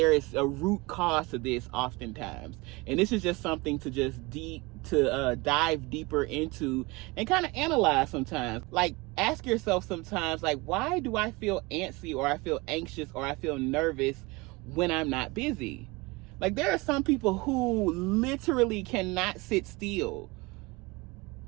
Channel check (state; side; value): quieter; left; 24.0 dB